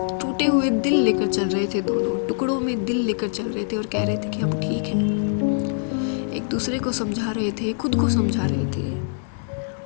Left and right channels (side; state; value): right; silent; 63 dB below the other